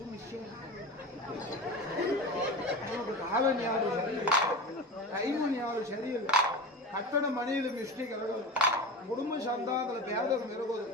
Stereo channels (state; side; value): normal; both; correlation 0.31